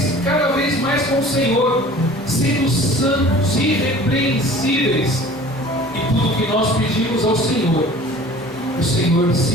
cada vez mais com o Senhor, sendo santos, irrepreensíveis, e tudo que nós pedimos ao Senhor, o Senhor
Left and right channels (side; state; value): both; normal; correlation 0.45